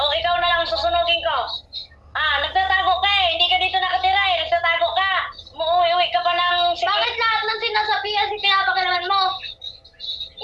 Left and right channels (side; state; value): both; identical; correlation 1.00